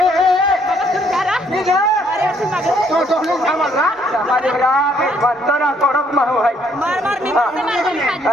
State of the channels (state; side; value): normal; both; correlation 0.67